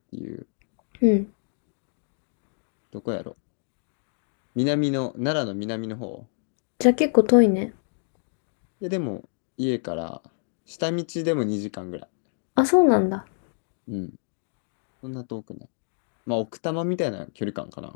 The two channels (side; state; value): right; silent; digital silence